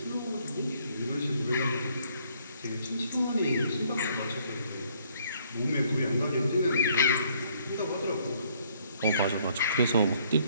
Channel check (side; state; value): both; inverted; correlation -0.65